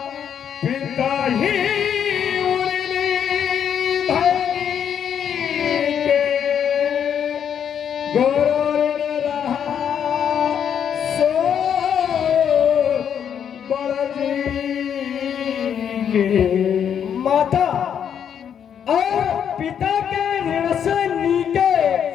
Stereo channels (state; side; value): quieter; right; 8.4 dB